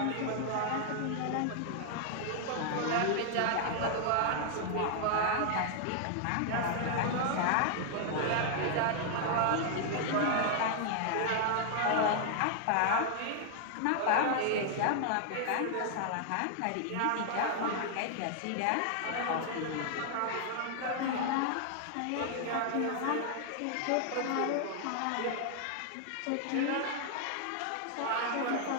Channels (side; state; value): both; different; correlation 0.00